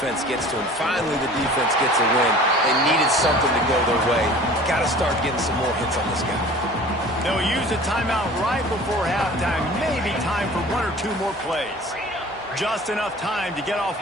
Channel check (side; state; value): both; normal; correlation 0.44